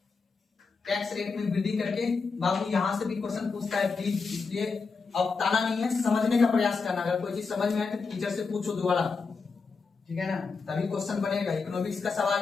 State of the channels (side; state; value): right; quieter; 4.7 dB